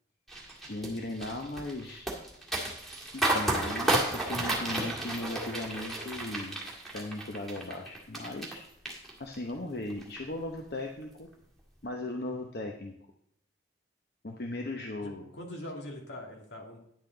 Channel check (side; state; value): both; normal; correlation 0.41